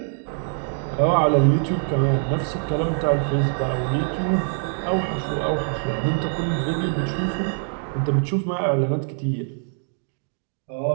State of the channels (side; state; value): left; silent; 63 dB below the other